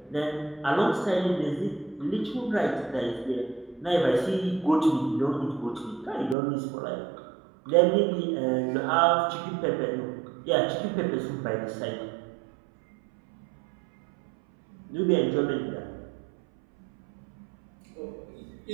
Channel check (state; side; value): drops out; left; at 6.4 s